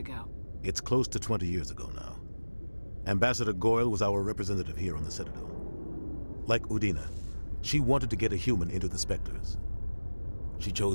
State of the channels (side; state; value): both; inverted; correlation -1.00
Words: It's close to 20 years ago now. Ambassador Goyle was our representative here on the Citadel. Like Udina, she wanted to get a human into the Spectres. She